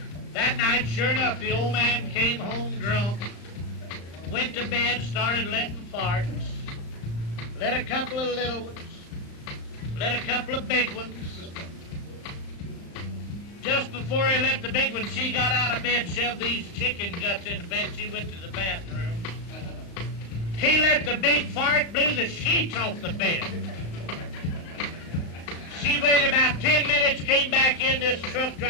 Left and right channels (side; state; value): right; late; 35 ms